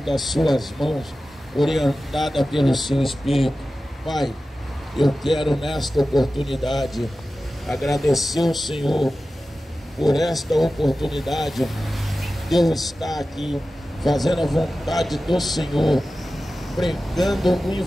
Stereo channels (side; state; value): both; normal; correlation 0.94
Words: suas mãos, orientada pelo seu Espírito. Pai, eu quero nesta oportunidade agradecer ao Senhor por esta oportunidade de eu estar aqui fazendo a vontade do Senhor, pregando o